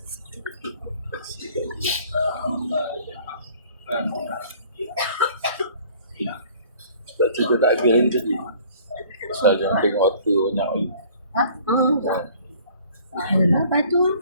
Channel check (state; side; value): inverted; both; correlation -0.53